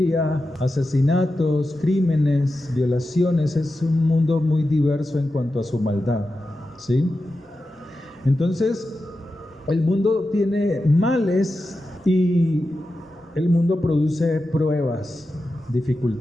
asesinatos, crímenes, violaciones. Es un mundo muy diverso en cuanto a su maldad, ¿sí? Entonces, el mundo tiene males y el mundo produce pruebas,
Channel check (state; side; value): normal; both; correlation 0.91